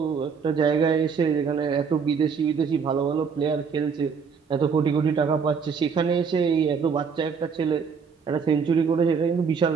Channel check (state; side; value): quieter; left; 6.0 dB